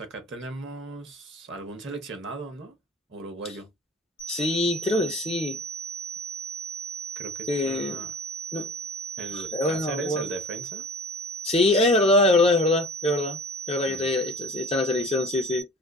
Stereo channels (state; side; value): normal; both; correlation 0.43